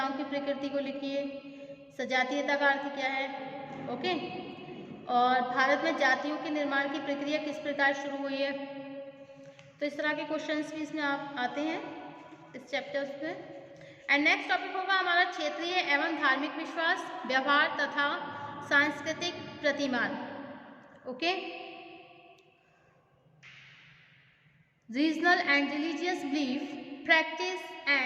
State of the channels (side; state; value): both; identical; correlation 1.00